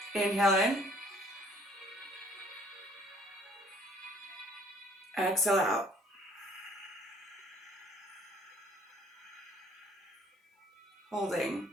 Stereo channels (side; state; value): both; normal; correlation 0.59